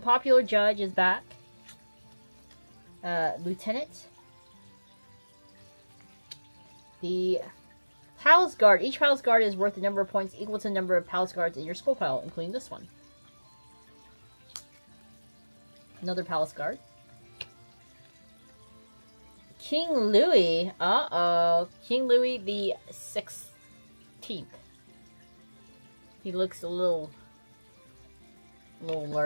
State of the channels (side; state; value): both; inverted; correlation -1.00